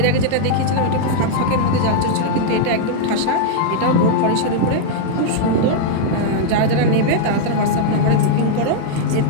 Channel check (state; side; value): different; both; correlation -0.01